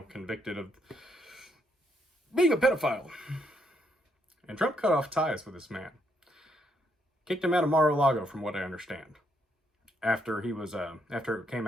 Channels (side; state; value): both; normal; correlation 0.74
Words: convicted of being a pedophile. And Trump cut off ties with this man. Kicked him out of Mar-a-Lago, from what I understand. After he was, after it came